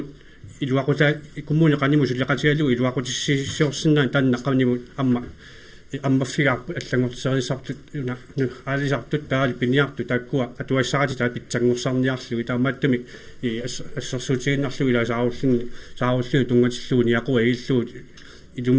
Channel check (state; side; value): identical; both; correlation 1.00